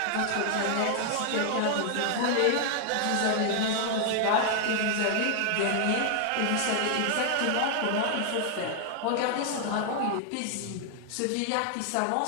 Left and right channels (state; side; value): different; both; correlation 0.00